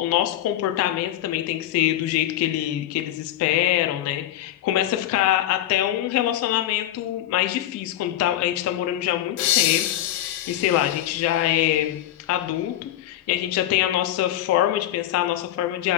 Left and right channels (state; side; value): quieter; right; 12.7 dB